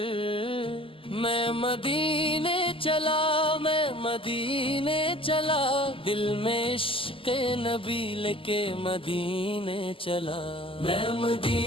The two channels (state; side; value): late; right; 0.26 ms